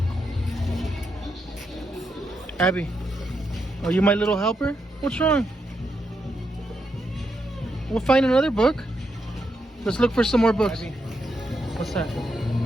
Abby, are you my little helper? What's wrong? We'll find another book. Let's look for some more books. Abby, what's that?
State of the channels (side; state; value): both; normal; correlation 0.82